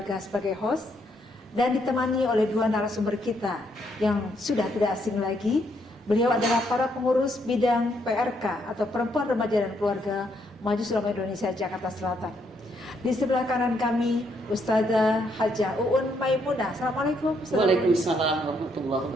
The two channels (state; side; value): normal; both; correlation 0.74